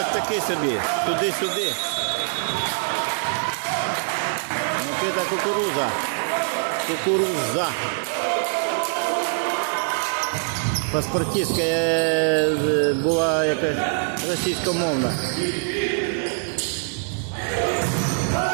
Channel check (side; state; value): left; silent; digital silence